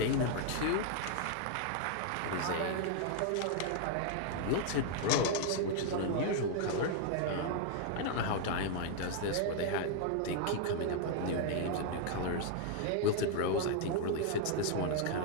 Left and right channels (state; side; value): different; both; correlation 0.00